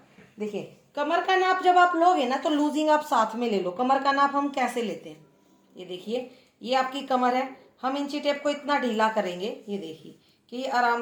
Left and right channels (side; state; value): both; identical; correlation 1.00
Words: देखिए कमर का नाप जब आप लोगे ना तो लूजिंग आप साथ में ले लो। कमर का नाप हम कैसे लेते हैं, ये देखिए ये आपकी कमर है, हम इंची टेप को इतना ढीला करेंगे, ये देखिए कि ये